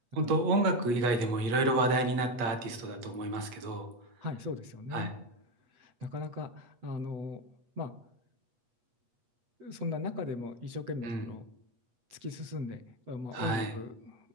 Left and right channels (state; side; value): late; left; 8.3 ms